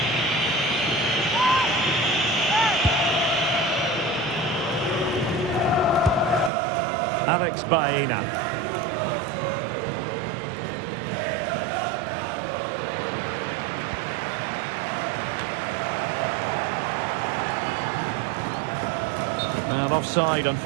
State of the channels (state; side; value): drops out; left; at 6.5 s